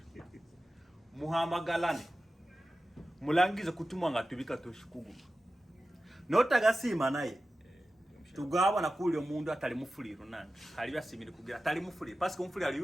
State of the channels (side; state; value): both; normal; correlation 0.94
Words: muhamagalane mulangize kutumwa ngatubika toshikugu notagasima naye tugaba na kuli omundu atali mufuliro nani hali byasimire kugira atali mufuliro parce que mufuliro ali